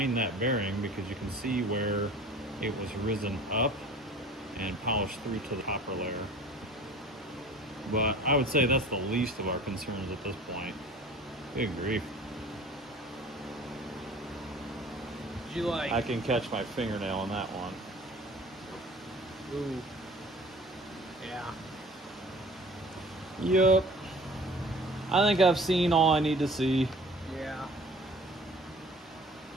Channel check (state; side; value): normal; both; correlation 0.46